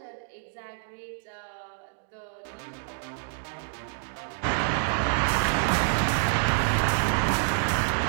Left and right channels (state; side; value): silent; left; 60 dB below the other